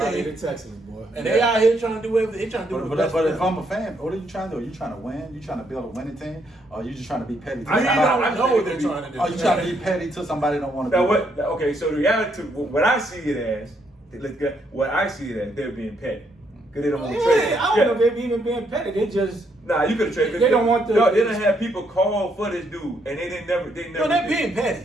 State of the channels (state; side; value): normal; both; correlation 0.74